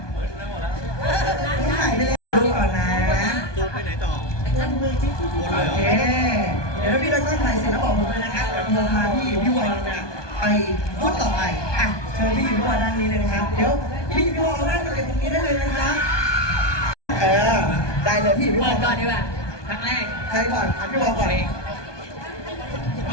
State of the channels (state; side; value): late; right; 1.2 ms